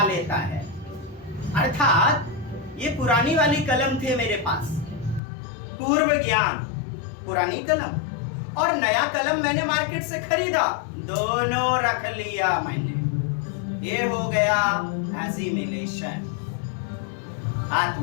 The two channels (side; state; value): right; drops out; at 5.2 s